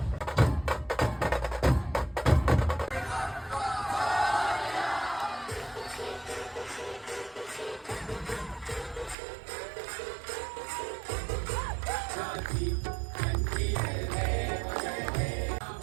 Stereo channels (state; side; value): drops out; left; at 9.2 s